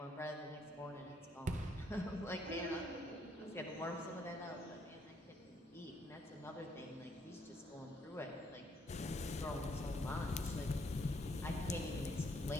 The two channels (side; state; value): both; normal; correlation 0.71